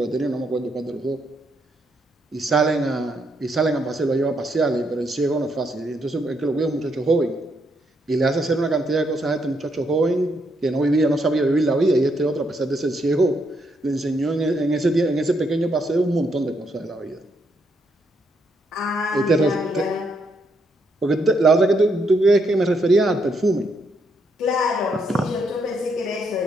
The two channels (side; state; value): both; normal; correlation 0.76